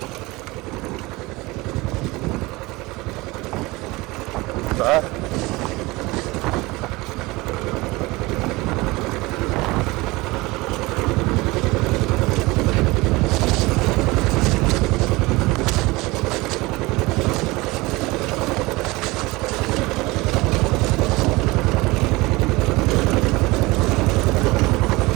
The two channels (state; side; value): quieter; left; 22.2 dB